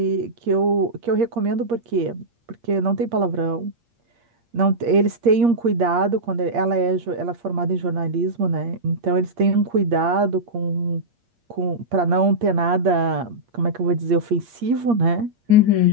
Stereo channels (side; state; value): left; late; 8.5 ms